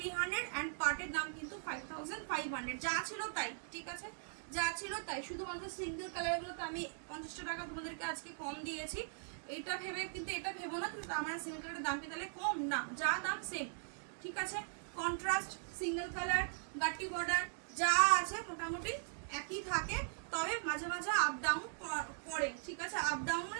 অ্যান্ড পাটের দাম কিন্তু 5500, যা ছিল তাই, ঠিক আছে, যা ছিল তাই। শুধুমাত্র সিঙ্গেল কালারগুলোতে আমি 50 টাকা তোমাদেরকে আজকে কম দিয়েছি, এটা ভেবে কিন্তু এটা ভেবো না কিন্তু আমার সিঙ্গেল কালারের দাম কি তাহলে কম, না, যা দাম সেম, ঠিক আছে। কন্ট্রাস্ট সিঙ্গেল কালার গাটি বর্ডার যা আছে মোটামুটি একই থাকে, তবে মাঝে মাঝে আপ ডাউন করে, ঠিক আছে। আপ ডাউন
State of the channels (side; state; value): left; silent; digital silence